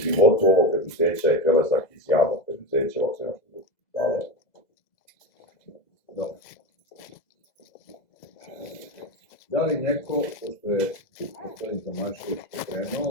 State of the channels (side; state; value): right; late; 2.0 ms